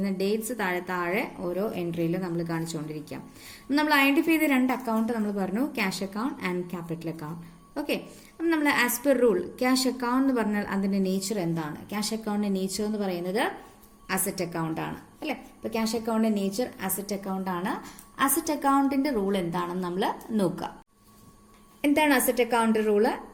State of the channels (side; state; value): both; identical; correlation 1.00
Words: ഡേറ്റ്സ് താഴെ ഓരോ എൻട്രിയിലും നമ്മൾ കാണിച്ചുകൊണ്ടിരിക്കാം. നമ്മൾ ഐഡന്റിഫൈ ചെയ്ത രണ്ട് അക്കൗണ്ട് നമ്മൾ പറഞ്ഞു, cash account and capital account. Okay, അപ്പം നമ്മൾ as per rule cash account എന്ന് പറഞ്ഞാൽ അതിന്റെ നേച്ചർ എന്താണ്? ക്യാഷ് അക്കൗണ്ടിന്റെ നേച്ചർ എന്ന് പറയുന്നത് അസറ്റ് അക്കൗണ്ട് ആണ് അല്ലെ? ഇപ്പൊ ക്യാഷ് അക്കൗണ്ടിന്റെ നേച്ചർ അസറ്റ് അക്കൗണ്ട് ആണ്. അസറ്റ് അക്കൗണ്ടിന്റെ റൂൾ എന്താണെന്ന് നമ്മൾ നോക്കുക. എന്താണ് asset account rule?